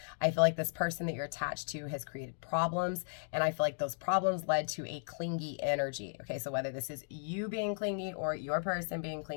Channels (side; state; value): right; silent; digital silence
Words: I feel like this person that you're attached to has created problems, and I feel like those problems led to a clingy energy. Okay, so whether this is you being clingy or your person being